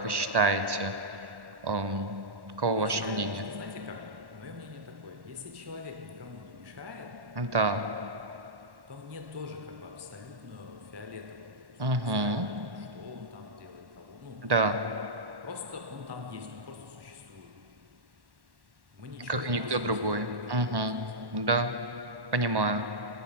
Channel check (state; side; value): late; left; 1.1 ms